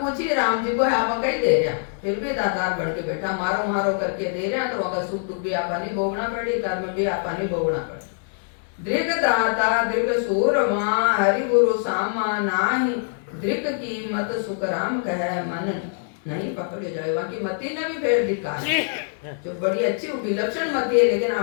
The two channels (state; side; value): silent; right; 63 dB below the other